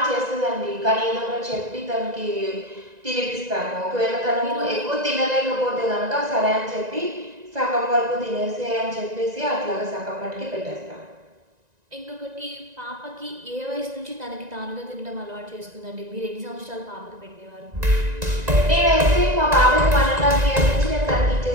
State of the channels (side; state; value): left; late; 1.9 ms